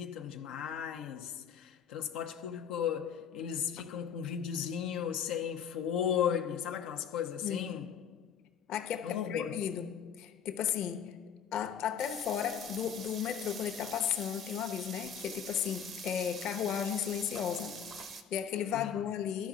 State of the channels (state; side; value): quieter; right; 8.0 dB